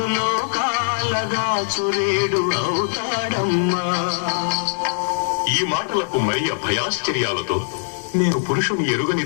లోకాలగా చురేడు అవుతాడమ్మా. ఈ మాటలకు మరియ భయాశ్చర్యాలతో, నేను పురుషుని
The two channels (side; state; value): right; silent; 64 dB below the other